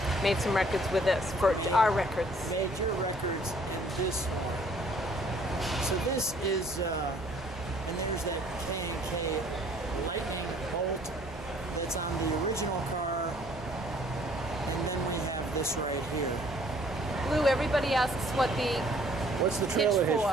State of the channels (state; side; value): normal; both; correlation 0.59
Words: made some records with this for our records. Made your records in this one. So this is, and there's that K&K lightning bolt that's on the original car, and then we have this right here. Lou, everybody asks what's the trailer hitch